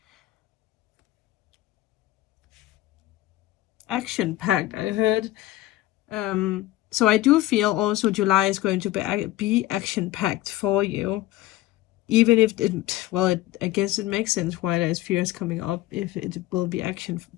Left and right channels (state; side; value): quieter; right; 15.8 dB